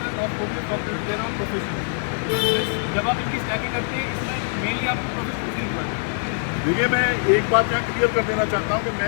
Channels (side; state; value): right; silent; digital silence